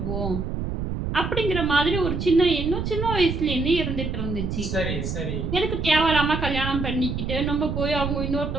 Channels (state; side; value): noise; right; rumble, 3 dB below the sound